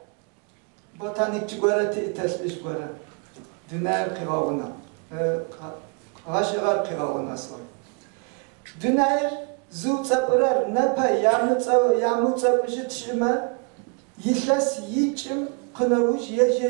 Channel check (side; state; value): left; quieter; 35.2 dB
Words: بوتانيك جغورتي تسليش غورا دينار قراونا غاشغار قراونا سوي دينار زو صبرر نبا يامو صبجت شما يشاس يچم قنوج